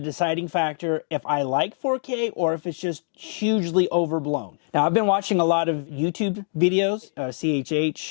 factor if I like 4K or if it's just hugely overblown. Now, I've been watching a lot of YouTube videos,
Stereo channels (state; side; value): silent; right; digital silence